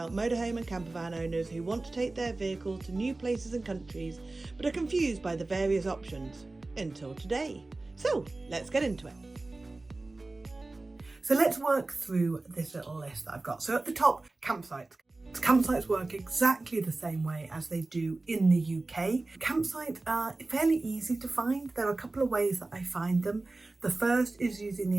motorhome and campervan owners who want to take their vehicle to new places and countries, but are confused by the various options. Until today. So let's get into it. So let's work through this little list that I've got. So at the top, campsites. Campsites work exactly the same way as they do in the UK. Campsites are fairly easy to find. There are a couple of ways that I find them. The first is using the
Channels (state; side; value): quieter; left; 3.2 dB